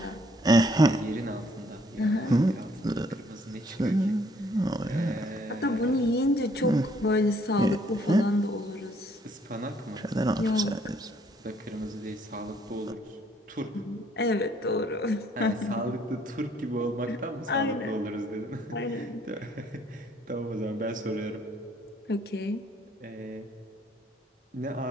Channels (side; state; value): both; normal; correlation 0.65